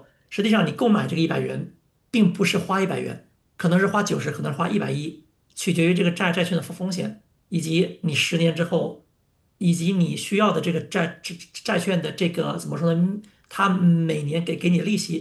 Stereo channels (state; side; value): identical; both; correlation 1.00